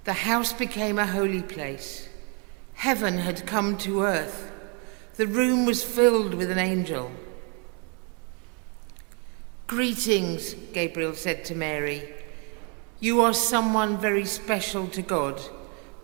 the house became a holy place. Heaven had come to earth. The room was filled with an angel. "Greetings," Gabriel said to Mary. "You are someone very special to God,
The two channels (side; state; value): left; quieter; 35.5 dB